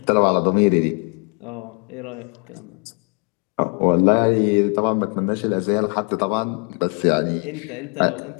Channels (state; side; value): quieter; right; 36.4 dB